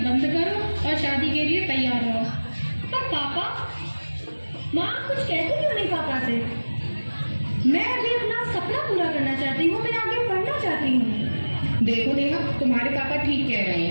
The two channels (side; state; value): both; inverted; correlation -1.00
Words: बंद करो और शादी के लिए तैयार रहो। पर पापा, माँ कुछ कहती क्यों नहीं पापा से? मैं अभी अपना सपना पूरा करना चाहती हूँ। मैं आगे पढ़ना चाहती हूँ। देखो नेहा, तुम्हारे पापा ठीक कह रहे